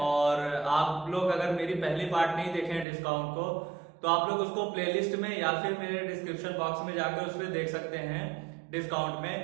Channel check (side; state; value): left; drops out; at 2.9 s